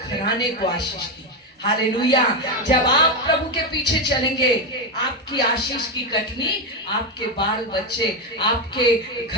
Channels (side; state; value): both; normal; correlation 0.10